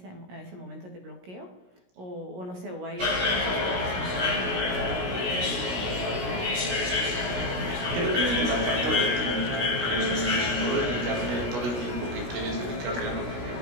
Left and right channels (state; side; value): late; left; 17 ms